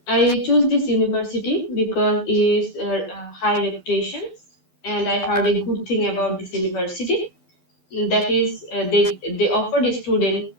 I choose this university because it is high reputation, and I heard a good thing about this university. That is, they offer the student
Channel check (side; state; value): right; late; 12 ms